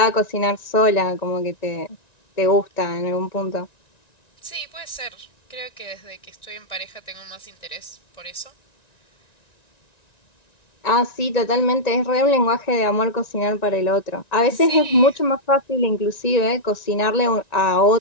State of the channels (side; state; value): right; late; 1.9 ms